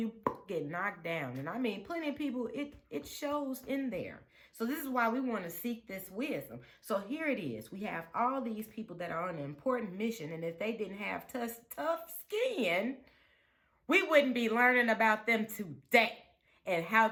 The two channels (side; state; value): both; identical; correlation 1.00